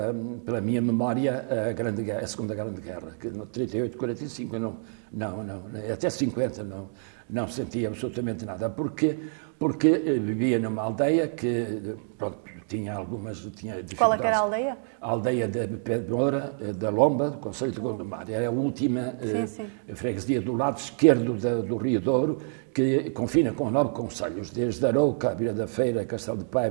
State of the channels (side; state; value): left; silent; digital silence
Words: minha memória a Segunda Grande Guerra, que no 38, 45, até 50 não sentia absolutamente nada. Porquê? Porque vivia numa aldeia que, pronto, tinha dificuldades. Qual é que era a aldeia? A aldeia de Pedemoura, da Lomba, do concelho de Gondomar. Era a última freguesia do lado esquerdo do Rio Douro, que confina com 9 concelhos, desde Arouca, Vila da Feira, Castelo de